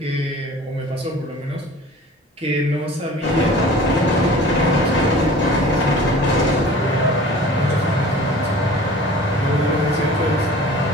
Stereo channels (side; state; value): both; normal; correlation 0.43